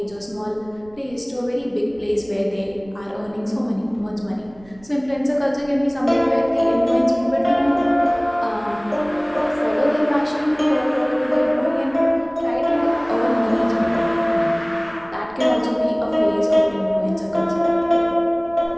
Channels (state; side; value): noise; right; rumble, 25 dB below the sound